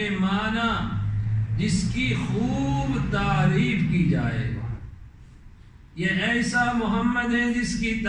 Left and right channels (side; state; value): both; identical; correlation 1.00